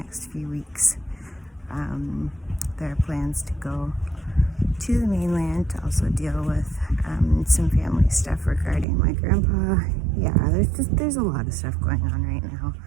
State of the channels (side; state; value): left; drops out; at 8.8 s